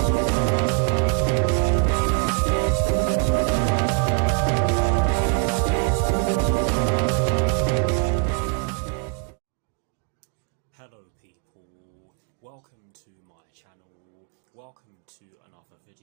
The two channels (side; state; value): left; quieter; 35.9 dB